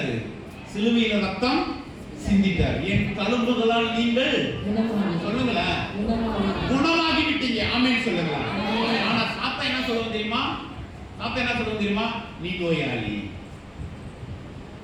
சிலுவையில ரத்தம் சிந்திட்டார். என் தழும்புகளால் நீங்கள் சொல்லுங்களேன் குணமாகி விட்டீங்க. ஆமென் சொல்லுங்க. ஆனா சாத்தா என்ன சொல்லுவோம் தெரியுமா? சாப்பிட்டா என்ன சொல்லுவோம் தெரியுமா? நீ நோயாளி,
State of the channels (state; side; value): identical; both; correlation 1.00